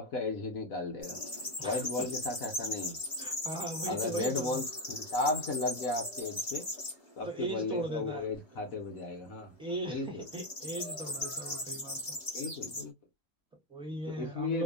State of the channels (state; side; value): late; right; 2.2 ms